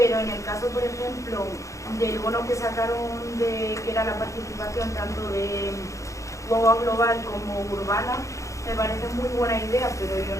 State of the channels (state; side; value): late; right; 0.15 ms